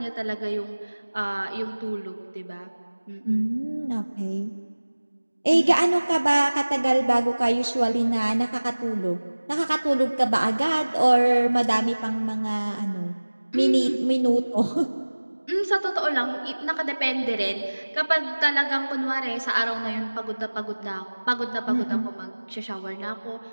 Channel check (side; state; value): both; inverted; correlation -1.00